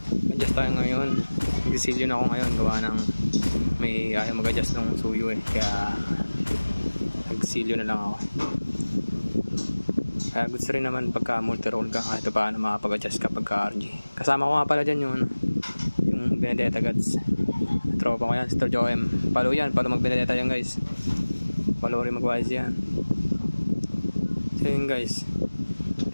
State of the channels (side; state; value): both; inverted; correlation -1.00